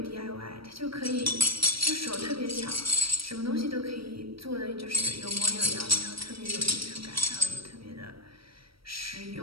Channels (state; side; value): late; left; 0.75 ms